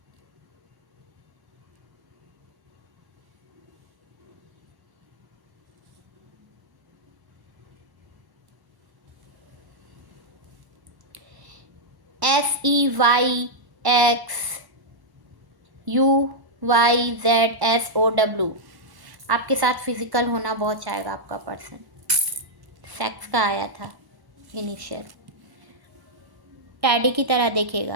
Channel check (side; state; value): left; late; 1.1 ms